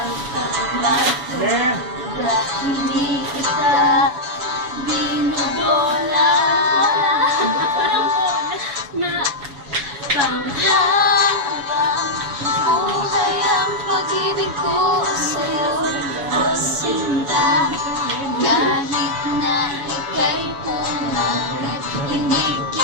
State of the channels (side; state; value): left; late; 7.1 ms